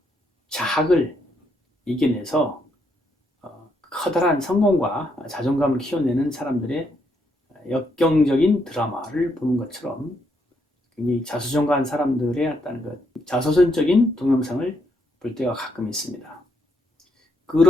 자학을 이겨내서 커다란 성공과 자존감을 키워내는 사람들의 역경적인 드라마를 보는 것처럼 굉장히 자수성가한 사람들의 어떤 그 자서전적인 동영상을 볼 때가 가끔 있습니다.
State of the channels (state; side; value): normal; both; correlation 0.76